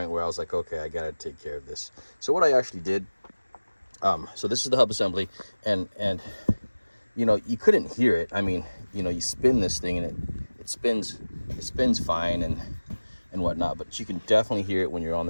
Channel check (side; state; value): both; inverted; correlation -1.00